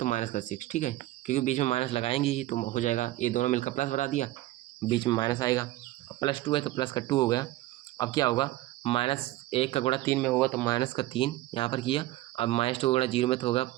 माइनस का 6। ठीक है, क्योंकि बीच में माइनस लगाएंगे ही तो हो जाएगा, ये दोनों मिलकर प्लस बना दिया, बीच में माइनस आएगा, +2 है तो प्लस का 2 हो गया। अब क्या होगा, -1 का गुणा 3 में होगा तो माइनस का 3 यहाँ पर किया। अब -2 का गुणा 0 में तो होगा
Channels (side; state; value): left; quieter; 16.5 dB